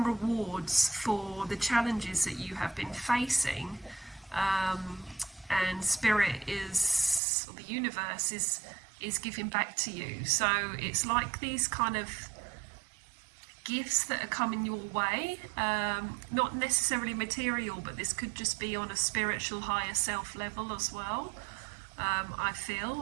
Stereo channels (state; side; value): drops out; left; at 7.2 s